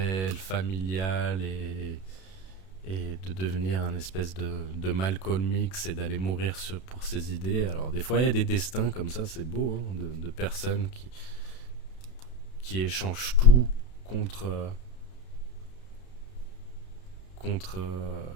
familiale et de devenir un espèce de Malcolm X et d'aller mourir pour ses idées. Alors des fois il y a des destins comme ça, c'est beau, hein, de personnes qui échangent tout contre, contre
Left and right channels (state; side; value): late; right; 32 ms